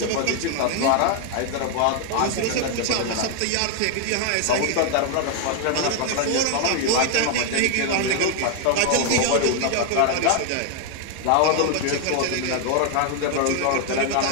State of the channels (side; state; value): both; different; correlation 0.00